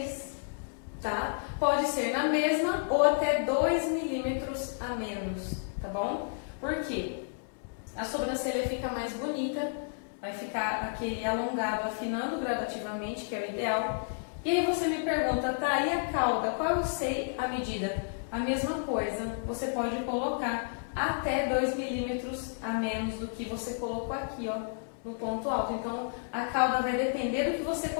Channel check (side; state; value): right; silent; digital silence